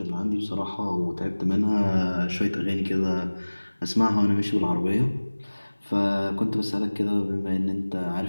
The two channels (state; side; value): inverted; both; correlation -1.00